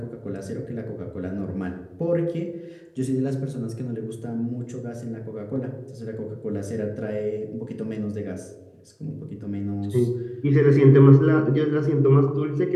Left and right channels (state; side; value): identical; both; correlation 1.00